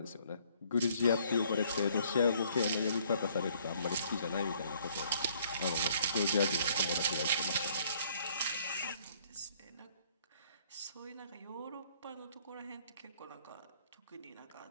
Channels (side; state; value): both; inverted; correlation -0.62